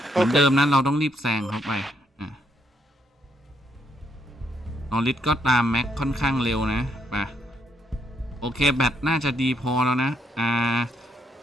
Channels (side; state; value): both; normal; correlation 0.75